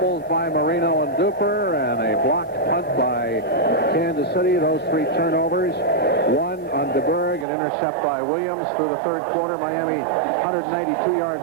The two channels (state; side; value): drops out; left; at 7.5 s